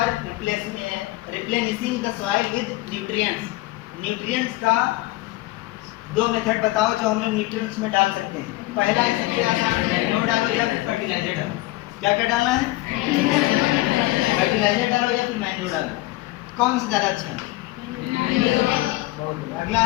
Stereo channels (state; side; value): quieter; right; 19.1 dB